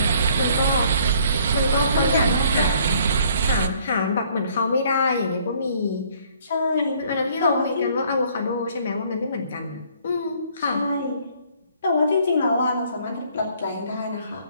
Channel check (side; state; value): both; inverted; correlation -0.60